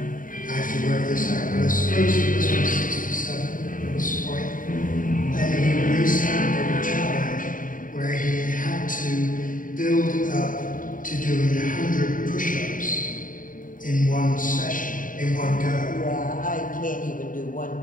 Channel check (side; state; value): right; late; 0.39 ms